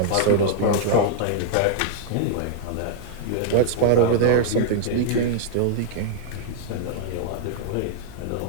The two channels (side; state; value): both; different; correlation -0.01